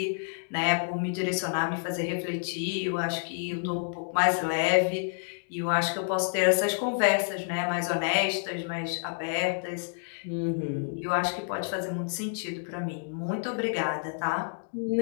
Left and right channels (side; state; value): right; silent; digital silence